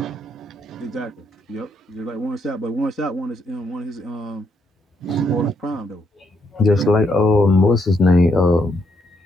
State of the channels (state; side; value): normal; both; correlation 0.76